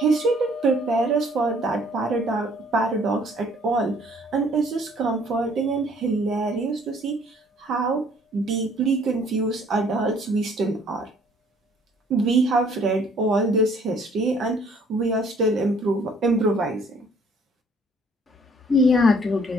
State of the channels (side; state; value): both; normal; correlation 0.59